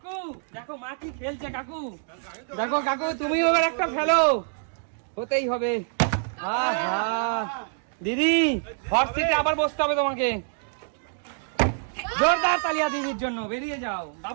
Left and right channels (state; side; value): silent; left; digital silence